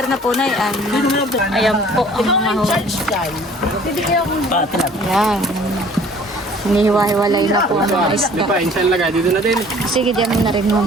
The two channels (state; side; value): normal; both; correlation 0.52